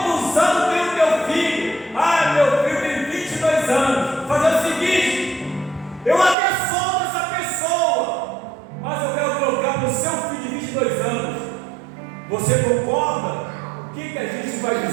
anos tem o teu filho? Meu filho tem 22 anos. Fazer o seguinte: eu até solto essa pessoa, mas eu quero trocar para o seu filho de 22 anos. Você concorda? O que a gente vai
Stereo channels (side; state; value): left; drops out; at 6.4 s